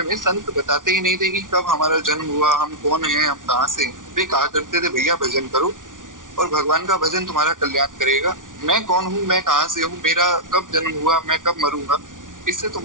में संत बताते ही नहीं थे कि कब हमारा जन्म हुआ, हम कौन हैं, हम कहाँ से। वे कहा करते थे भैया भजन करो और भगवान का भजन तुम्हारा कल्याण करेगा। मैं कौन हूँ, मैं कहाँ से हूँ, मेरा कब जन्म हुआ, मैं कब मरूंगा, इससे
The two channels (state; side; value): late; left; 0.88 ms